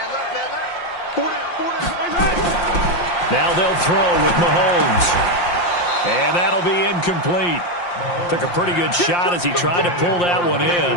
left, man left. 4 down. Now they'll throw with Mahomes. And that'll be incomplete. Took a pretty good shot as he tried to pull that one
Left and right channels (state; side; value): late; right; 5.7 ms